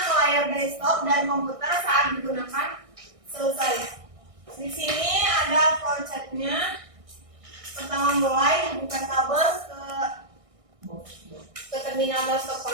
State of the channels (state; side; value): late; left; 1.6 ms